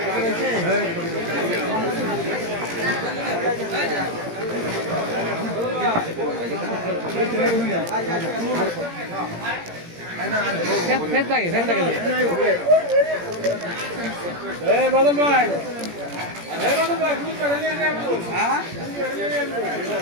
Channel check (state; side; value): late; left; 17 ms